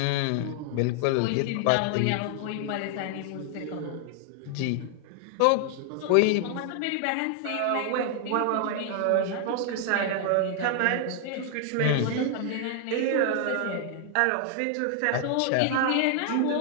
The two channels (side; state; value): both; different; correlation 0.00